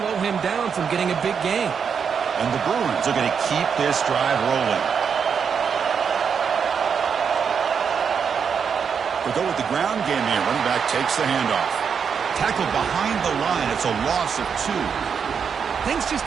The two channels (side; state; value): left; quieter; 6.7 dB